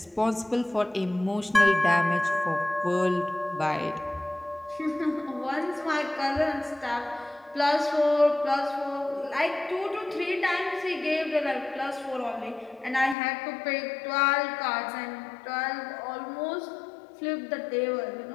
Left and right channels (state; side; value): drops out; right; at 13.2 s